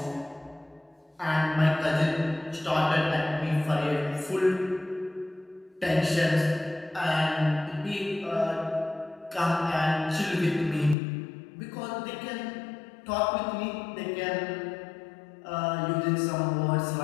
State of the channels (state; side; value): drops out; right; at 11.0 s